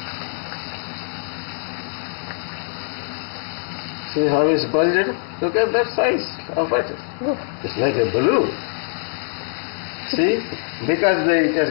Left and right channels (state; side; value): silent; right; 63 dB below the other